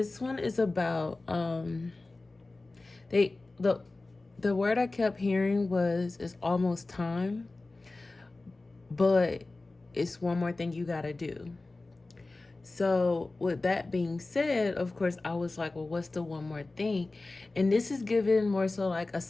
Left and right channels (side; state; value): right; quieter; 3.2 dB